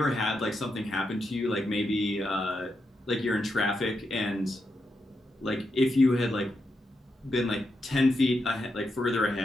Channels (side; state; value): both; normal; correlation 0.85